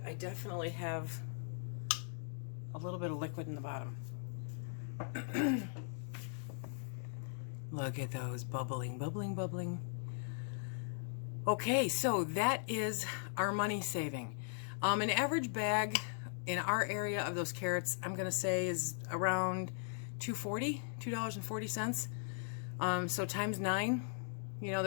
I definitely have a little bit of liquid in the bottom. Look at those bubbling, bubbling, bubbling. Okay, so that is our money saving. An average bag in our area of those carrots, I'm gonna say, is around $2.40. So times 9, you know,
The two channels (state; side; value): silent; right; digital silence